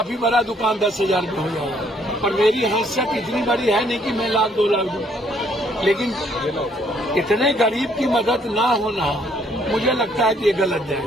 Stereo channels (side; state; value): both; normal; correlation 0.66